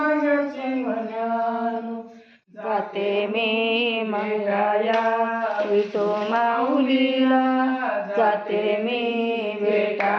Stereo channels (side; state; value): both; identical; correlation 1.00